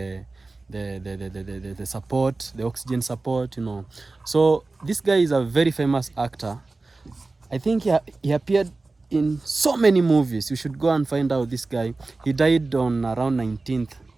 support, the oxygen support, you know. So this guy is a very famous actor. I think he appeared in so many movies. You should go and find out this guy. He died on around 19th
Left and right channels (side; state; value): left; quieter; 3.5 dB